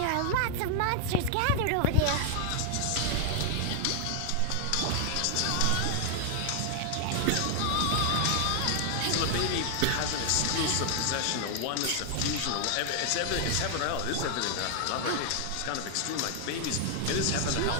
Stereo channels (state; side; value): different; both; correlation 0.00